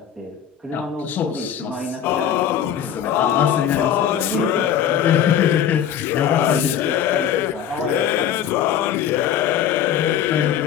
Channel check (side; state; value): right; quieter; 9.4 dB